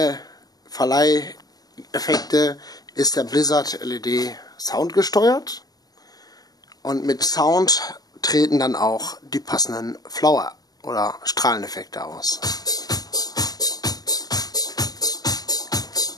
Verleiheffekte ist der Blizzard LED soundgesteuert und mit Sound treten dann auch die passenden Flower- oder Strahleneffekte aus.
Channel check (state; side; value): late; right; 0.18 ms